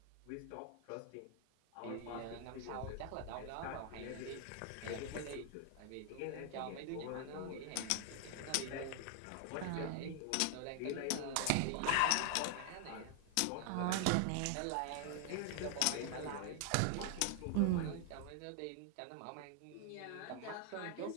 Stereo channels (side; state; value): both; different; correlation 0.00